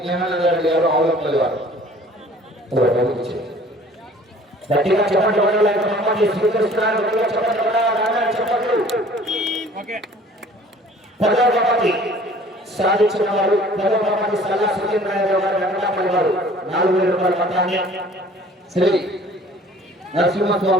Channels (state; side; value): normal; both; correlation 0.51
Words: జ్ఞానానందరెడ్డి గారు ఆవులపల్లి వారు. గట్టిగా చెప్పండి వడాలని బహుమతి స్వీకరిస్తున్నారు. గట్టిగా చెప్పండి వడాలని చెప్పండి. ఓకే 10వ బహుమతి సాధించిన వారు 10వ బహుమతి సల్లా సురేంద్రరావు గారు వెంకటపల్లి వారు 4,000 రూపాయల మొత్తాన్ని శ్రీ